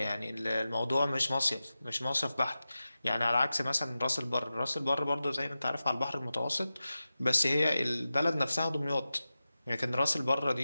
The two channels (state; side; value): inverted; both; correlation -0.94